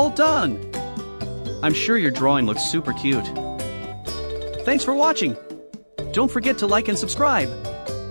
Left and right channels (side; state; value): both; inverted; correlation -1.00